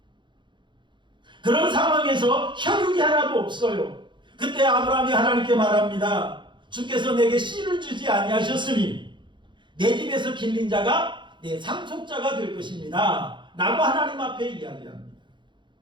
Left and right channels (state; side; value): late; left; 0.23 ms